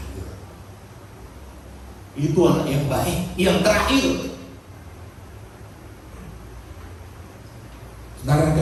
Itu anak yang baik, yang terakhir. Saudara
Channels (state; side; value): identical; both; correlation 1.00